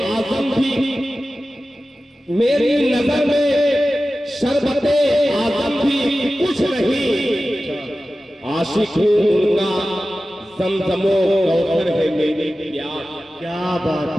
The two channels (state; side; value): normal; both; correlation 0.95